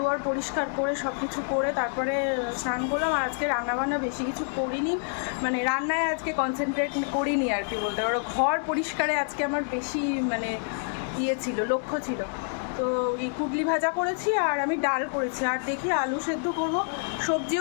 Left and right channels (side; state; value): right; silent; 60 dB below the other